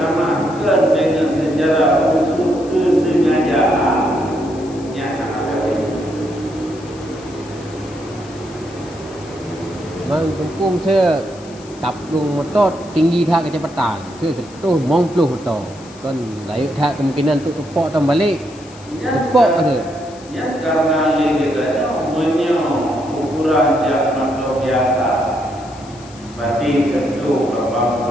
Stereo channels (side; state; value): left; noise; hiss, 23 dB below the sound